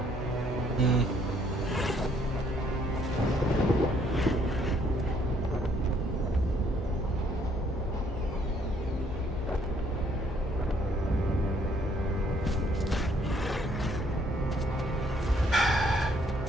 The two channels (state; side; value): normal; both; correlation 0.66